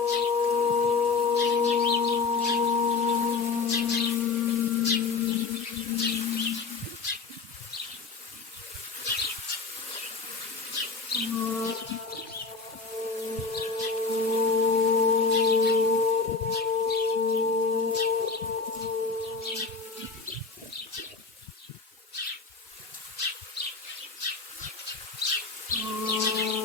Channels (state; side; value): quieter; right; 4.5 dB